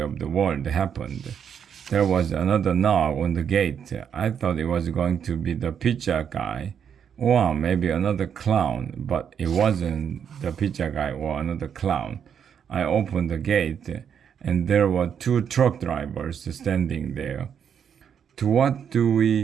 the world happened. There was another knock on the gate. I thought it was going to be the pizza guy or maybe another clown, but it wasn't the pizza guy or another clown. I opened the gate and there were two truck drivers standing there. To what do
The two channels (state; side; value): quieter; left; 7.9 dB